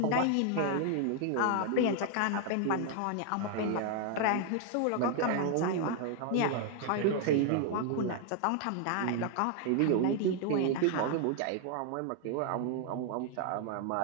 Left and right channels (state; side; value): different; both; correlation 0.00